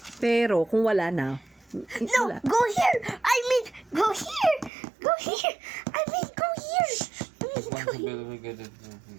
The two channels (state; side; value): drops out; left; at 4.7 s